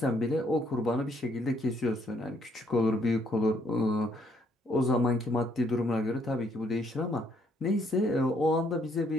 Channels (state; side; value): normal; both; correlation 0.69